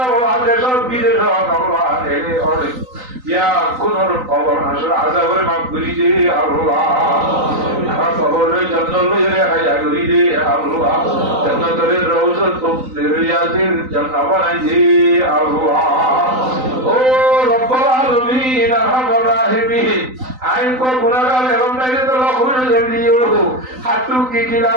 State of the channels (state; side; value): late; left; 3.9 ms